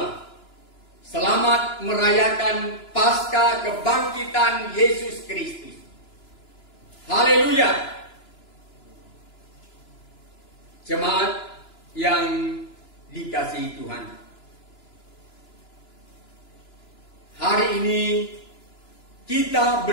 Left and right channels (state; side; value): late; right; 2.9 ms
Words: Selamat merayakan Paskah kebangkitan Yesus Kristus. Haleluya. Jemaat yang dikasihi Tuhan, hari ini kita